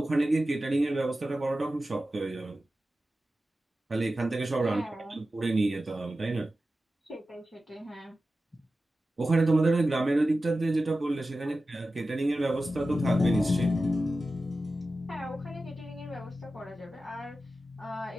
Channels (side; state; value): both; normal; correlation 0.94